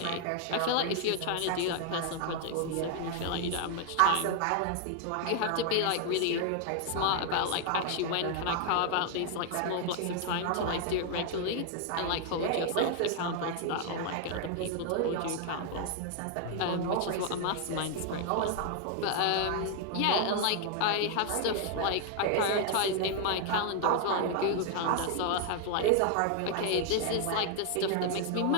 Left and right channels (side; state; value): both; different; correlation 0.00